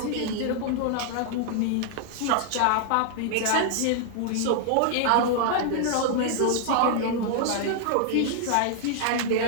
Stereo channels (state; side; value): different; both; correlation 0.00